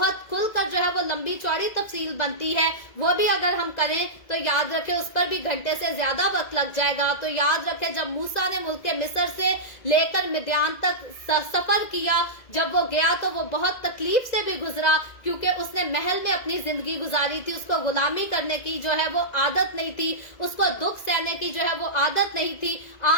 खुलकर जो है वो लंबी चौड़ी तफसील बनती है। वो भी अगर हम करें तो याद रखें उस पर भी घंटे से ज्यादा वक्त लग जाएगा। तो याद रखें, जब मूसा ने मुल्क मिस्र से लेकर मिद्यान तक सफर किया, जब वो गया तो वो बहुत तकलीफ से भी गुजरा, क्योंकि उसने महल में अपनी जिंदगी गुजारी थी, उसको गुलामी करने की जो है वो आदत नहीं थी, उसको दुख सहने की जो है वो आदत नहीं थी।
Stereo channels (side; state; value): right; late; 2.0 ms